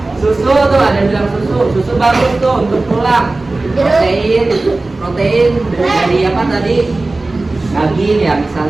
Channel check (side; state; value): left; quieter; 3.1 dB